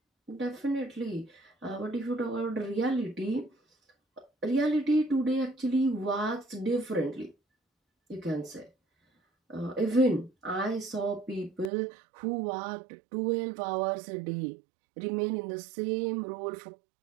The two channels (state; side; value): drops out; left; at 11.7 s